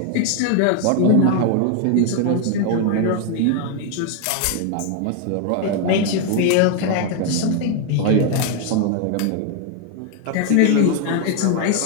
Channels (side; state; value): both; different; correlation 0.00